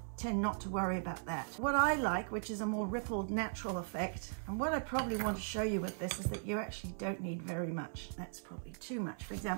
tend not to worry about that. What I like, which is a more rippled natural effect, and what I probably want to show you with this is that you actually don't need very much. That's probably too much, for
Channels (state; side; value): silent; left; 52 dB below the other